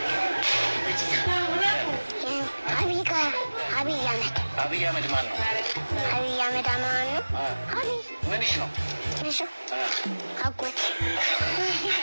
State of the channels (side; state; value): both; inverted; correlation -1.00